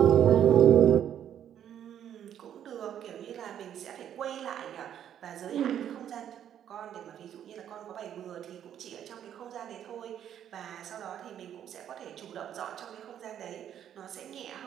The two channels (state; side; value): quieter; left; 9.9 dB